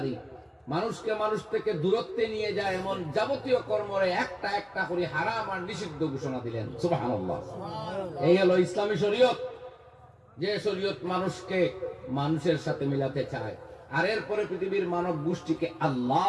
মানুষকে মানুষ থেকে দূরত্বে নিয়ে যায় এমন যাবতীয় কর্মরে একটা একটা করে হারাম আর নিষিদ্ধ ঘোষণা দিলেন। সুবহানাল্লাহ। এই হলো ইসলামী শরীয়ত, যে শরীয়ত মানুষকে মানুষের সাথে মিলাতে চায়, আর এরপরে পৃথিবীর মানব গোষ্ঠীকে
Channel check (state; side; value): identical; both; correlation 1.00